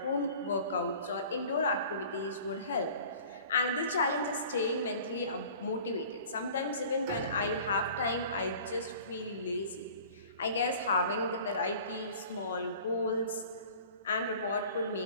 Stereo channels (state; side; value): inverted; both; correlation -0.45